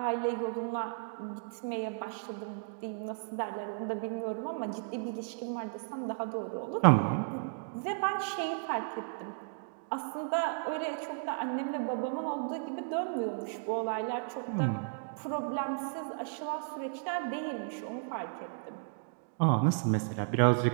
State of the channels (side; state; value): left; silent; digital silence